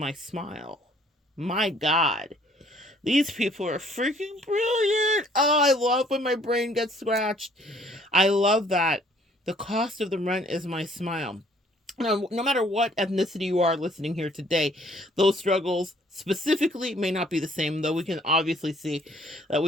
smile. My God. These people are freaking brilliant. Oh, I love when my brain gets scratched. I love that. The cost of the rent is my smile. Now, no matter what ethnicity you are listening here today, those struggles specifically may not be the same, though we can obviously see that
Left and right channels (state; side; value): normal; both; correlation 0.60